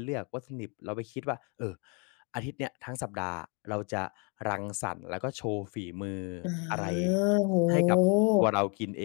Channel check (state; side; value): quieter; right; 34.5 dB